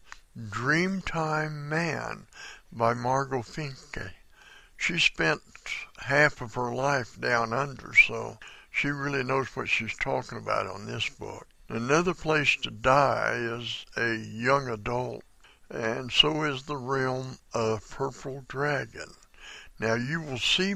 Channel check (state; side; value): identical; both; correlation 1.00